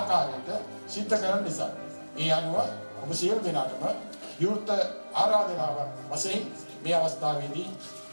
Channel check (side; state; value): both; inverted; correlation -1.00